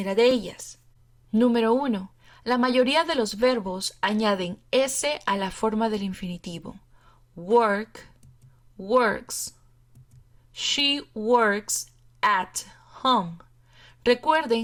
de ellas. Número 1. La mayoría de los verbos añaden S a la forma del infinitivo. Work, works. She works at home.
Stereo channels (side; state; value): both; identical; correlation 1.00